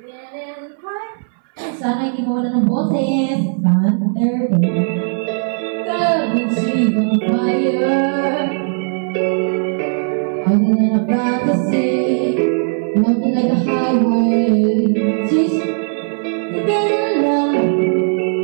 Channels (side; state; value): left; silent; 62 dB below the other